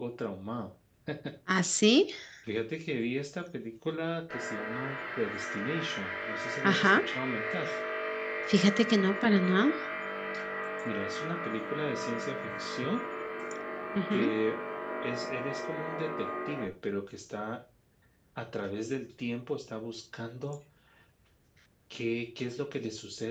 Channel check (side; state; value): both; identical; correlation 1.00